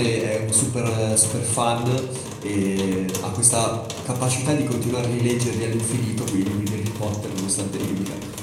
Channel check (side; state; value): both; identical; correlation 1.00